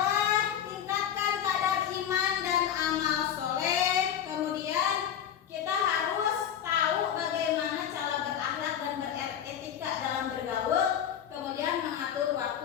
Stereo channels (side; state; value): right; quieter; 9.4 dB